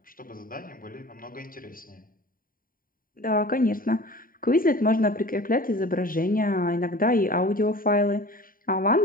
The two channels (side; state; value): right; late; 0.41 ms